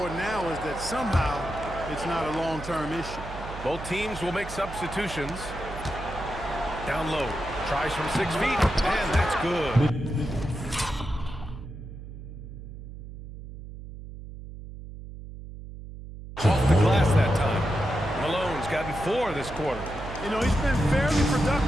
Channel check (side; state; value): right; noise; hum, 12 dB below the sound